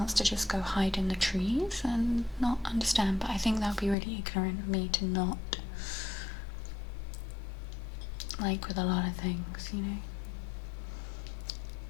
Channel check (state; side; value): drops out; right; at 4.0 s